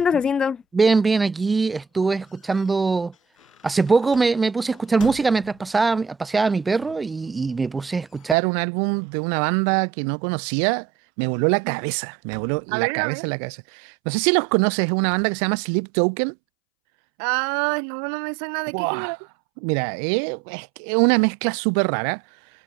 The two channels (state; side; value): drops out; left; at 8.3 s